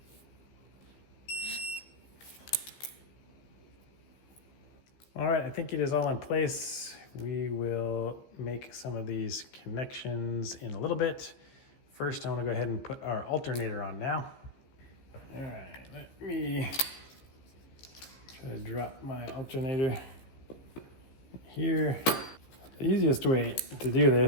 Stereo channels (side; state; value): right; late; 15 ms